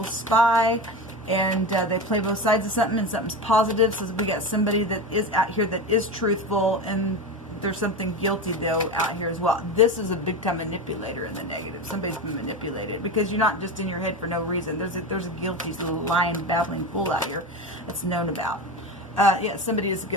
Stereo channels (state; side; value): normal; both; correlation 0.23